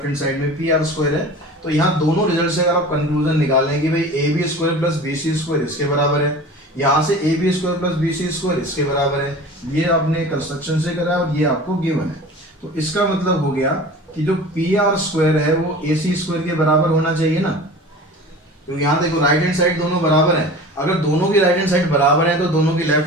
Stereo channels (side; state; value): both; normal; correlation 0.38